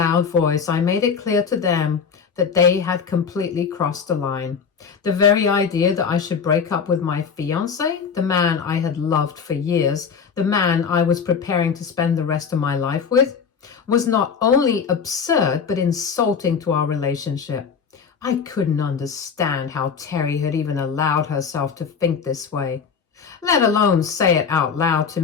voice, I made it clear to them that they had completely crossed the line. The very idea that I should break up with my fiancé, the man I had loved for years, the man I was preparing to spend the rest of my life with, was not only absurd but insulting to our relationship. I couldn't understand how Terry had even allowed herself to think this way, let alone say it out loud to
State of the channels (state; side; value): quieter; right; 6.3 dB